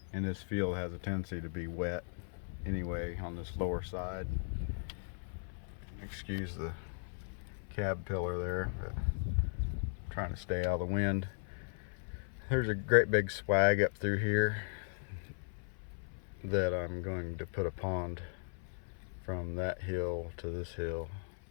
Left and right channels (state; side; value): silent; right; 53 dB below the other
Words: And this field has a tendency to be wet anyway on this lower side. Excuse the cab pillar there, but I'm trying to stay out of the wind. There's a great big swag up through here that I'm going to put a pond from that hill to this hill,